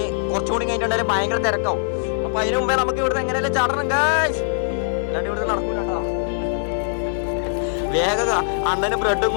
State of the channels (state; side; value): silent; right; 61 dB below the other